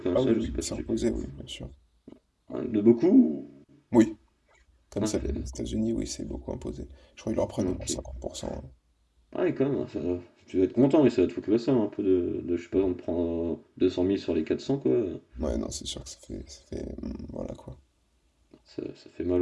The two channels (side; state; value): both; identical; correlation 1.00